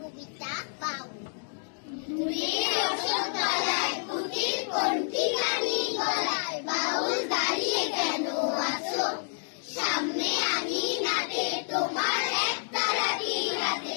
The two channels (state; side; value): silent; right; digital silence